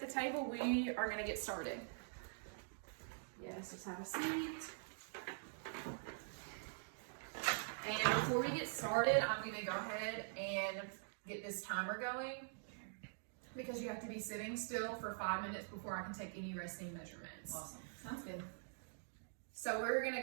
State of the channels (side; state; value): left; silent; digital silence